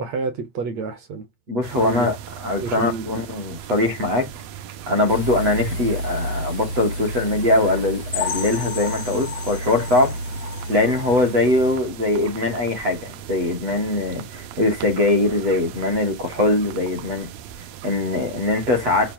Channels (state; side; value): late; left; 8.3 ms